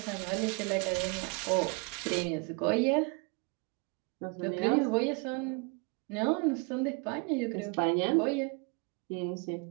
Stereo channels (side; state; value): left; quieter; 32.0 dB